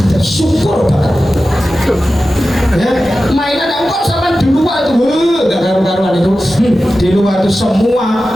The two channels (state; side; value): normal; both; correlation 0.94